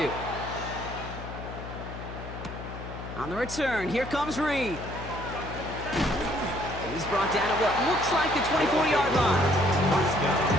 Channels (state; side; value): noise; left; hum, 10 dB below the sound